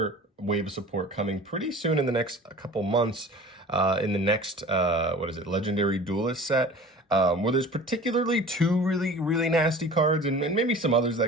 wave of support coming pretty soon in the next couple months. In the next Legendary Duelist set. Where there's particularly two really nasty cards and maybe some others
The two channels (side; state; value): both; normal; correlation 0.42